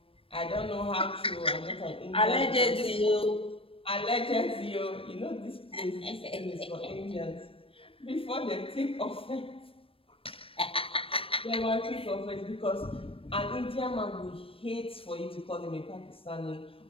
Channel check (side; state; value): right; late; 0.27 ms